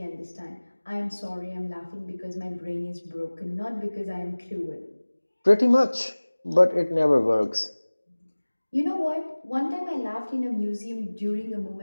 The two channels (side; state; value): both; inverted; correlation -1.00